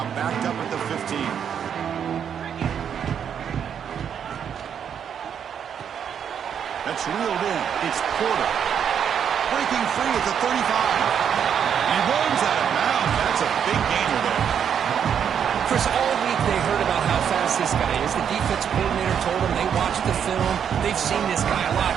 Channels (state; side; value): quieter; left; 8.1 dB